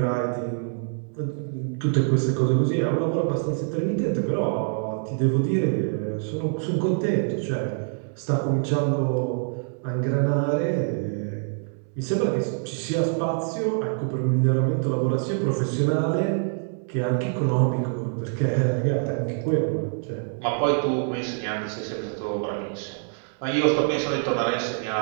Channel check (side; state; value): left; silent; 62 dB below the other